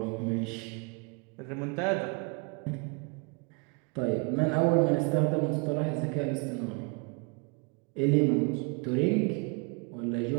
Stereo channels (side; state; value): left; quieter; 31.5 dB